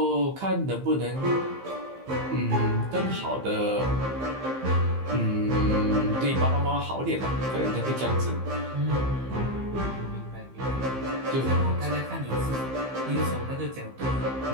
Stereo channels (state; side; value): late; left; 15 ms